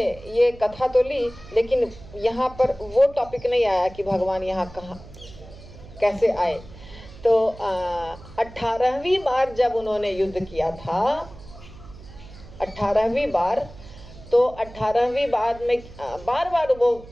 ये कथा तो ली, लेकिन यहाँ पर वो टॉपिक नहीं आया कि भगवान यहाँ कहाँ कैसे आए। तो 18वीं बार जब उन्होंने युद्ध किया था, 18वीं बार, तो 18वीं बार में बार बार वो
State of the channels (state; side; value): noise; right; hum, 18 dB below the sound